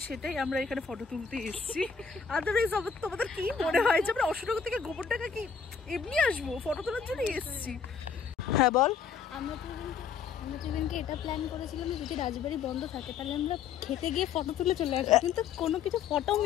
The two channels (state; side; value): quieter; right; 6.5 dB